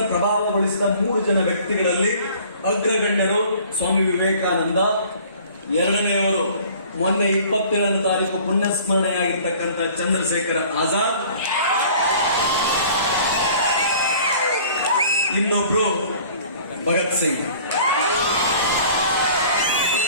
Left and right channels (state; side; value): inverted; both; correlation -0.50